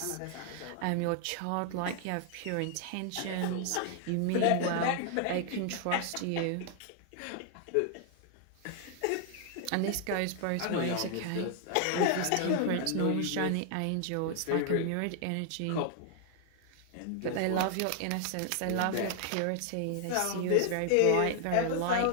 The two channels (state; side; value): different; both; correlation 0.00